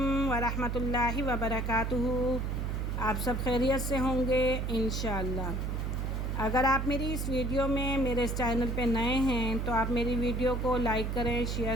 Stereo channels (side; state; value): right; noise; hum, 1 dB below the sound